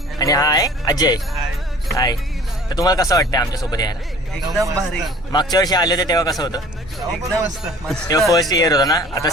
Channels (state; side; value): normal; both; correlation 0.48